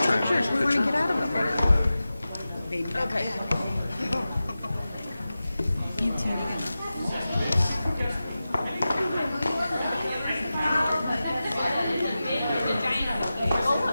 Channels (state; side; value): inverted; both; correlation -0.94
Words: Pictures, we want to get out of them. Okay.